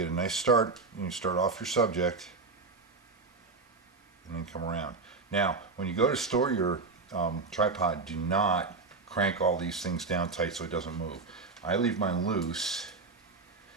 a nice start. You start off your subject and then come around. Now, when you go to store your tripod, do not crank all these things down tight so it doesn't move. I leave mine loose,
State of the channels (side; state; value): left; quieter; 4.1 dB